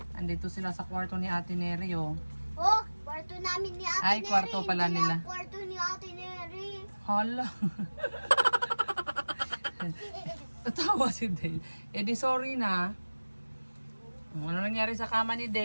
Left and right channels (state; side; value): inverted; both; correlation -1.00